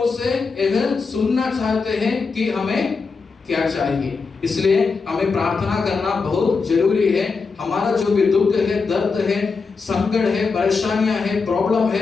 से यह सुनना चाहते हैं कि हमें क्या चाहिए। इसलिए हमें प्रार्थना करना बहुत जरूरी है। हमारा जो भी दुख है, दर्द है, संकट है, परेशानियां है, प्रॉब्लम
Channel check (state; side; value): quieter; right; 4.7 dB